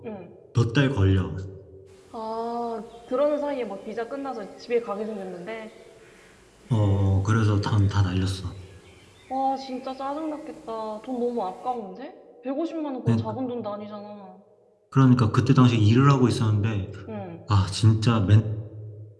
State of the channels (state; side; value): identical; both; correlation 1.00